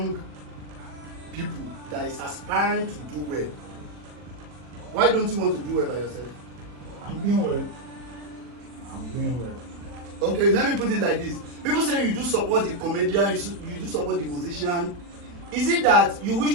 people that is aspiring to do well. Why don't you want to do well by yourself? I'm doing well. I'm doing well. Okay, let me put it like this. People say you do support the comedian, you do support the musician. Is it that you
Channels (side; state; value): left; late; 40 ms